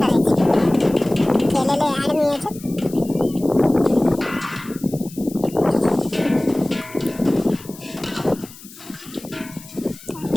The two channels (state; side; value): noise; left; hiss, 19 dB below the sound